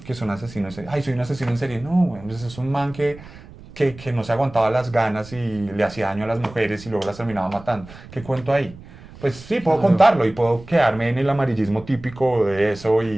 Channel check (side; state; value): right; noise; rumble, 18 dB below the sound